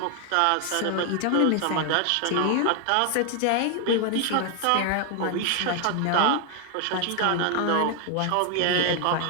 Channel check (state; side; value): different; both; correlation 0.00